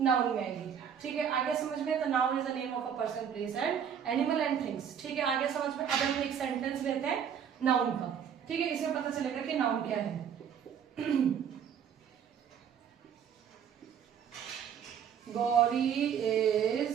में आएगी, ठीक है। आगे समझ में, तो noun is the name of a person, place and animal and things, ठीक है। आगे समझ में, अब हम एक सेंटेंस लेते हैं नाउन का, ठीक है, इसमें पता चलेगा कि नाउन क्या है। Gauri is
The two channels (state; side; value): quieter; left; 8.1 dB